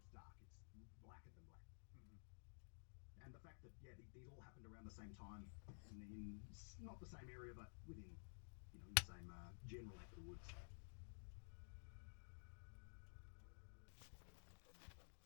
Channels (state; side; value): silent; right; digital silence